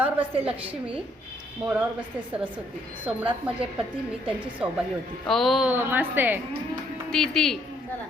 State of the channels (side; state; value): both; normal; correlation 0.69